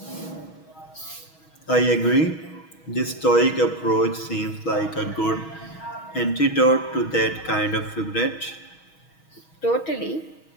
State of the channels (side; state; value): right; late; 6.3 ms